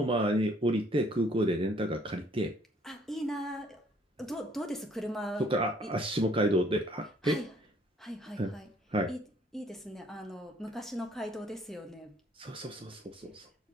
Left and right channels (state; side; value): normal; both; correlation 0.61